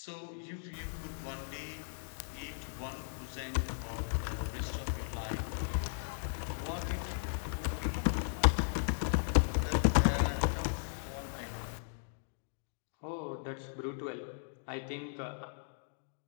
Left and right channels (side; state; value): right; silent; digital silence